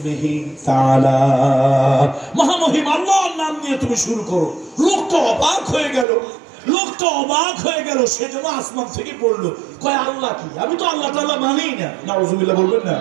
তাআলা, মহামহিম আল্লাহর নাম নিয়ে তুমি শুরু করো। লোকটা অবাক হয়ে গেল, সেজন্য আসমান থেকে পড়লো, কয় আল্লাহ কি? আমি তো আল্লাহ তাআলা মানি না। নাউজুবিল্লাহ বলবেন না?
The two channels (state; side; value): drops out; left; at 6.1 s